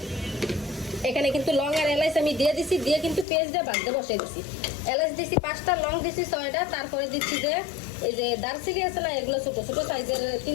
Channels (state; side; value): drops out; right; at 3.2 s